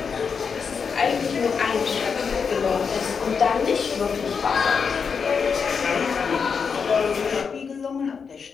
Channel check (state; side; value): quieter; right; 5.9 dB